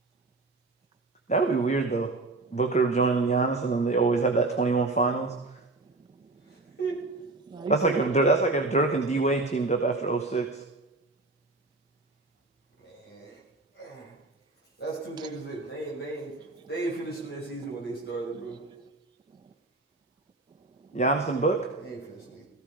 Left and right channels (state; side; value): quieter; left; 3.2 dB